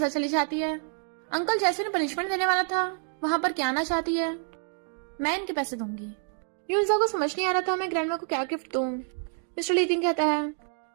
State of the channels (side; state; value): left; silent; 56 dB below the other